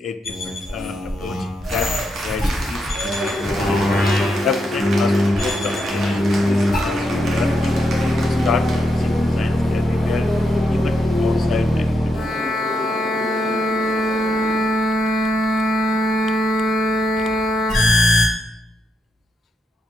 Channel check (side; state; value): both; normal; correlation 0.82